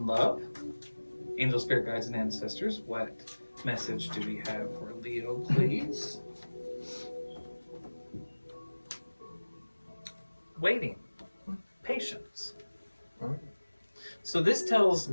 love, angel, spirit guides, and ancestors, what message do we have for Leo, please? Waiting. Patience. So this tells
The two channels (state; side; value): inverted; both; correlation -1.00